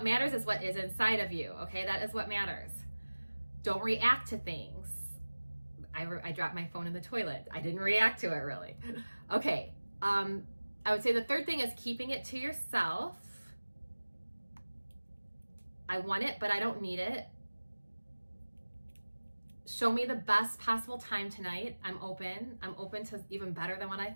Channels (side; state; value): both; inverted; correlation -1.00